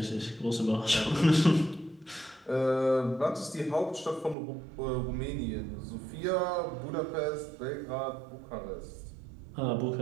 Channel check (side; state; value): left; drops out; at 4.4 s